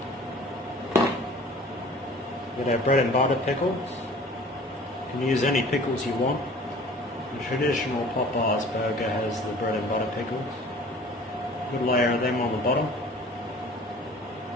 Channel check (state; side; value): normal; both; correlation 0.47